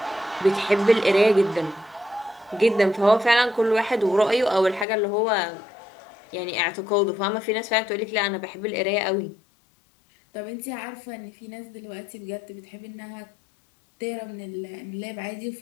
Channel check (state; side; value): drops out; right; at 4.9 s